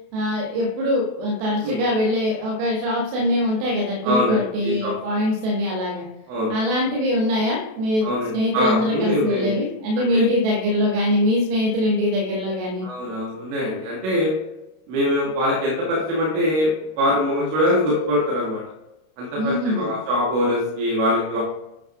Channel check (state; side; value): late; left; 32 ms